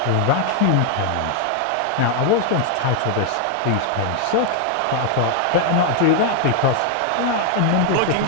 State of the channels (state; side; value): different; both; correlation 0.00